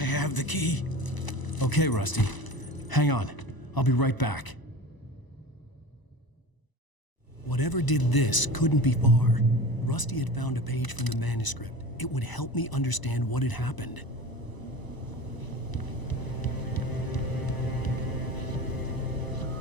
the key. Okay, Rusty. Hang on. I'll be right back. Whatever did this couldn't be far. Rusty had found a page from the manuscript. It would help me understand what had happened.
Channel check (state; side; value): late; right; 1.0 ms